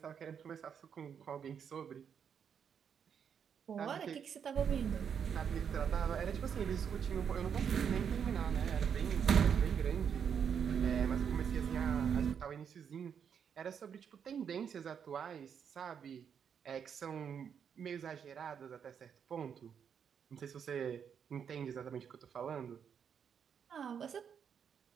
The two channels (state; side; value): quieter; left; 7.5 dB